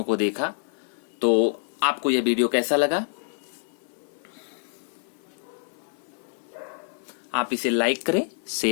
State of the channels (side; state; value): right; silent; 57 dB below the other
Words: को देखा। तो आपको यह वीडियो कैसा लगा? आप इसे लाइक करें,